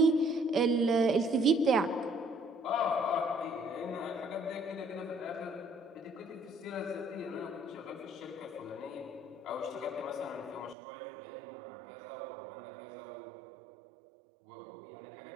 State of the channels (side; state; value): left; drops out; at 10.8 s